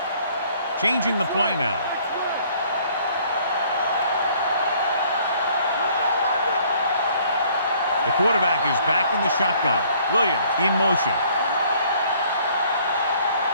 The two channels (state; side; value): inverted; both; correlation -0.59